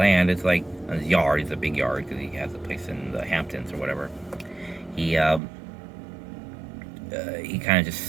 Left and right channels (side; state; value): left; drops out; at 5.4 s